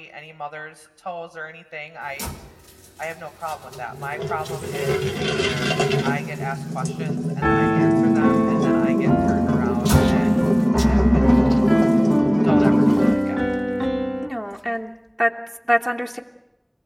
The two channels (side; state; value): both; identical; correlation 1.00